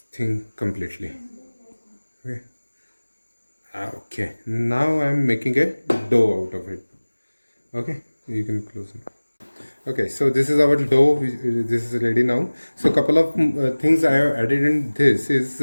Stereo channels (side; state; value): both; inverted; correlation -1.00